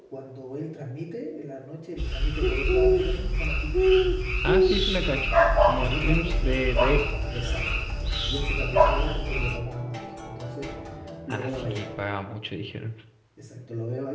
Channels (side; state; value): both; identical; correlation 1.00